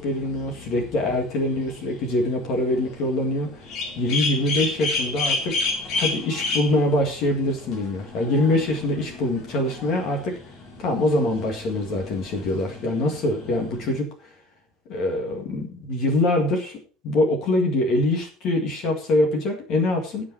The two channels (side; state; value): both; normal; correlation 0.44